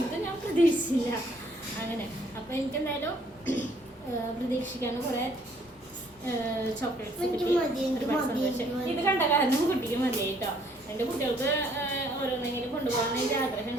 ഇത് ഞാൻ പ്രതീക്ഷിച്ചില്ല. അങ്ങനെ അപ്പോൾ എനിക്കെന്തായാലും പ്രതീക്ഷിക്കാനും കുറേ ചോക്ലേറ്റ്സ് കിട്ടി. ഇത് കണ്ട കാരണം കുട്ടിക്ക് മതിയായി കേട്ടോ. എൻ്റെ കുട്ടികൾക്ക് ഓരോന്നെങ്കിലും കൊണ്ടുപോകാൻ എനിക്ക്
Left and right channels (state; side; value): normal; both; correlation 0.63